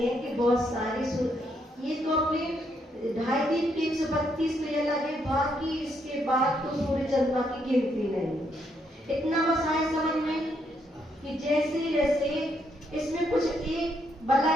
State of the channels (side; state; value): both; normal; correlation 0.75